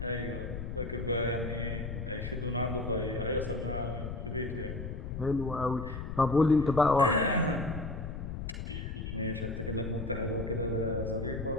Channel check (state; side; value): noise; left; rumble, 6 dB below the sound